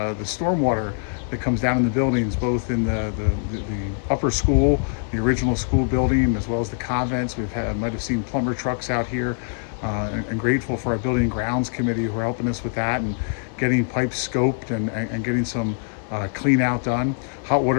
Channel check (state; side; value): silent; right; digital silence